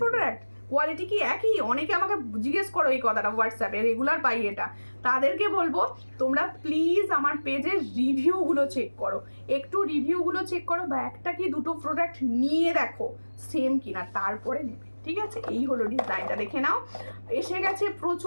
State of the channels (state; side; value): inverted; both; correlation -1.00